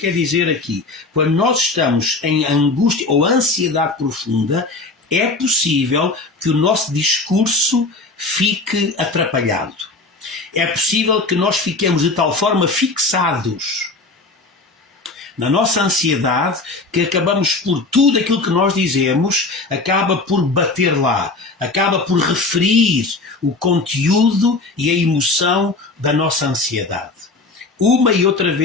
dizer aqui. Quando nós estamos em angústia ou ansiedade profunda, é possível que o nosso discurso fique atrapalhado. É possível que nós fiquemos de tal forma fixados na nossa ansiedade que acabamos por tudo aquilo que nós dizemos, acaba por bater lá, acaba por referir o conteúdo e a emoção da nossa ansiedade. Uma e outra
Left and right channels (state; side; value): quieter; right; 3.4 dB